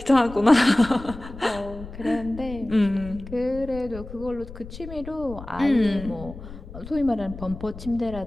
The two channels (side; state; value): left; noise; rumble, 13 dB below the sound